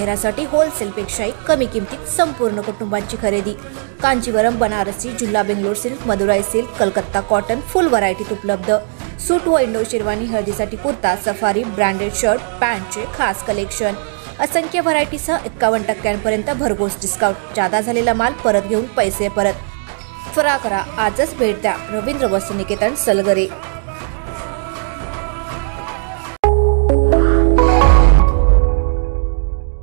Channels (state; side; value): silent; left; digital silence